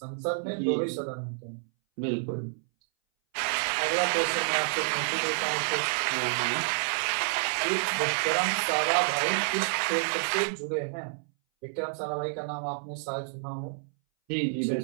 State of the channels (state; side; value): silent; left; 59 dB below the other